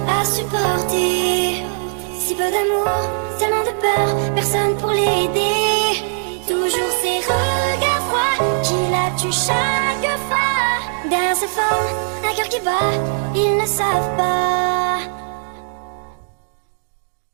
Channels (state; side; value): silent; left; digital silence